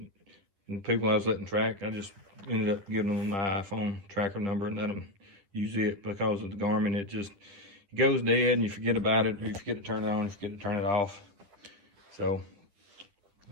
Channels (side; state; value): left; late; 10 ms